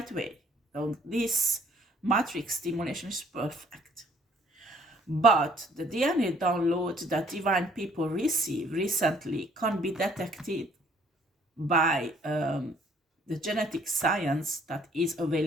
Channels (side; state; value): both; normal; correlation 0.60